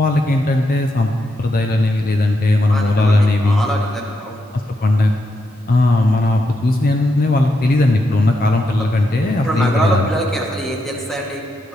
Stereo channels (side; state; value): both; normal; correlation 0.82